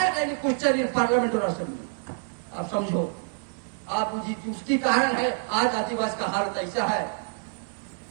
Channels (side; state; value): left; silent; digital silence